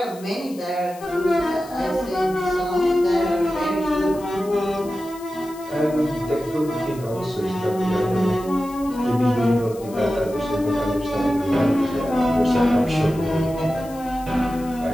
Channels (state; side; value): noise; left; hiss, 21 dB below the sound